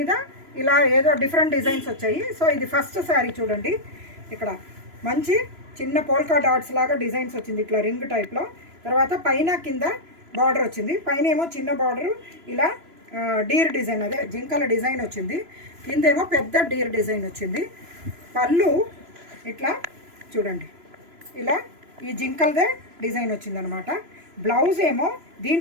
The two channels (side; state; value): left; late; 3.0 ms